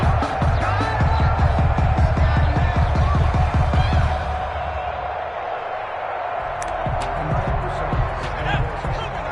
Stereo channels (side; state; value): both; identical; correlation 1.00